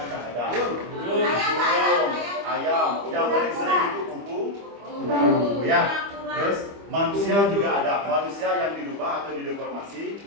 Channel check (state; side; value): late; left; 25 ms